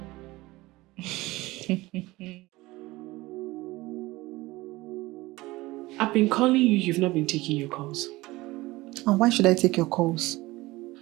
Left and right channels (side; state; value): left; quieter; 19.9 dB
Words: I've been calling you, you've not been taking your calls. And why should I take your calls?